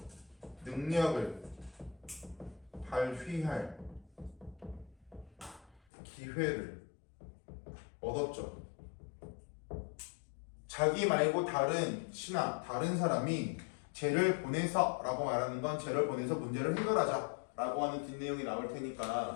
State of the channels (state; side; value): drops out; right; at 5.8 s